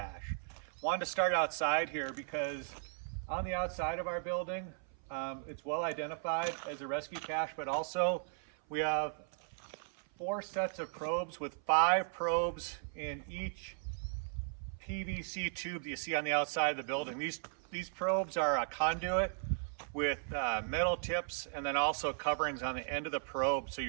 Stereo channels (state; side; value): silent; left; 53 dB below the other